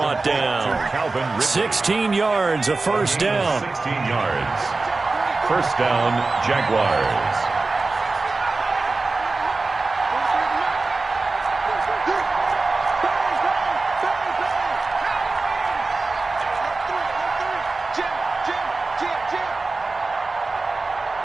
down. 16 yards, a first down. 16 yards. First down, Jaguars.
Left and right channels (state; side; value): quieter; left; 3.6 dB